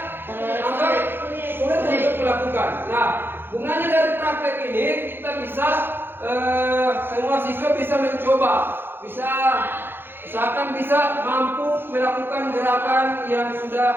anggap sulit untuk melakukan. Nah, gunanya dari praktek ini kita bisa semua siswa bisa mencoba, usahakan bisa mampu melakukan gerakan yang sudah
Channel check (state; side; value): late; left; 0.10 ms